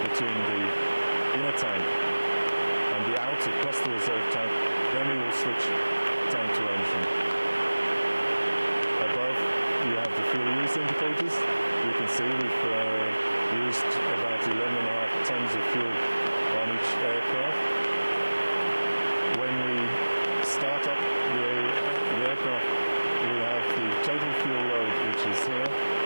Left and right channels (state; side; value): inverted; both; correlation -1.00